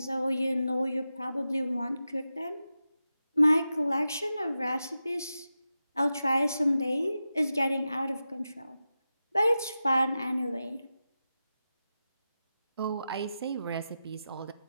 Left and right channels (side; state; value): both; inverted; correlation -0.91